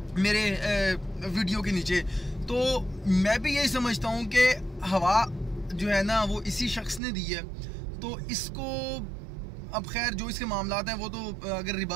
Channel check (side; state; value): left; drops out; at 7.0 s